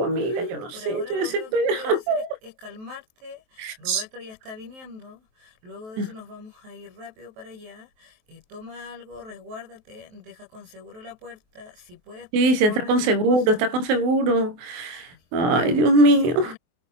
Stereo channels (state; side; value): late; left; 23 ms